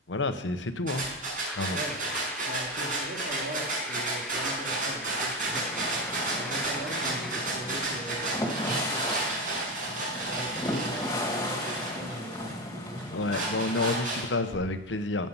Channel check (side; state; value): both; normal; correlation 0.17